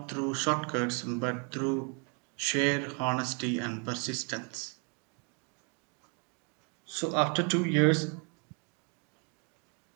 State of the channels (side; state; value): left; quieter; 36.8 dB